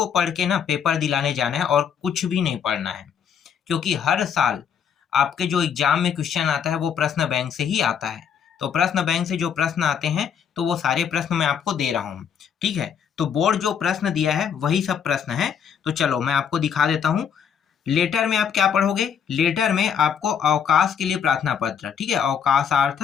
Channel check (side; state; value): right; quieter; 7.8 dB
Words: पढ़ के ना पेपर दिलाने जाना है और कुछ भी नहीं पढ़ना है, क्योंकि हर साल आपके जो एग्जाम में क्वेश्चन आता है वो प्रश्न बैंक से ही आता है। तो प्रश्न बैंक से जो प्रश्न आते हैं तो वो सारे प्रश्न मैं आपको दे रहा हूँ। ठीक है, तो बोर्ड जो प्रश्न दिया है वही सब प्रश्न है। तो चलो मैं आपको दिखा देता हूँ। लेटर में आप क्या पढ़ोगे? लेटर में आपको अवकाश के लिए प्रार्थना पत्र, ठीक है, अवकाशार्थ